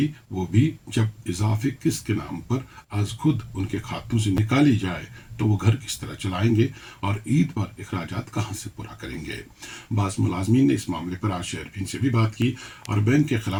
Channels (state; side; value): identical; both; correlation 1.00